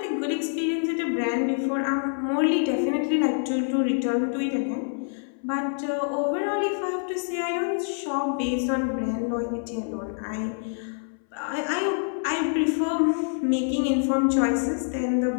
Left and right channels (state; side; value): silent; right; 61 dB below the other